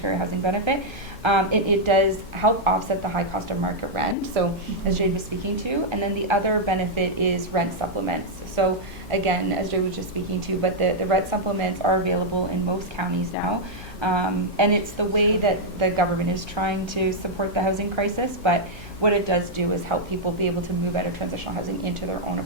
Housing Benefit. It does help offset the high cost of market rent, so as Jade was speaking to. And then the other benefit is rent supplements. So again, as Jade was just speaking to, but the rent supplements are available in most counties now. And it's the way that the government is trying to support the housing crisis, but what it does do is help people be able to move out of transitional housing into their own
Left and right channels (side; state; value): both; normal; correlation -0.04